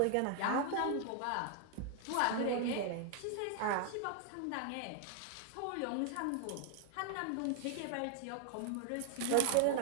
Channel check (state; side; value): different; both; correlation 0.00